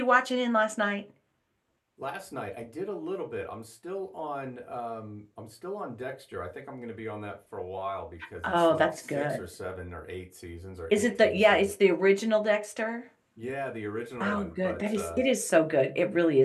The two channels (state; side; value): identical; both; correlation 1.00